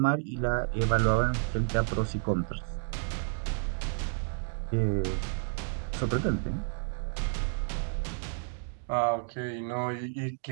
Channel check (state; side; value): silent; left; digital silence